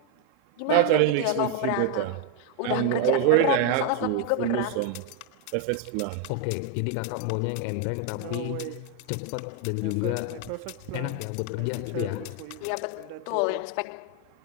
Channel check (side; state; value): both; different; correlation 0.01